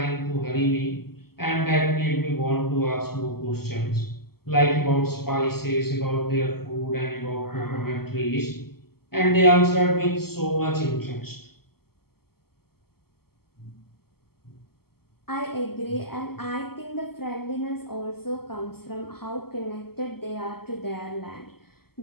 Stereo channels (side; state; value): right; late; 0.95 ms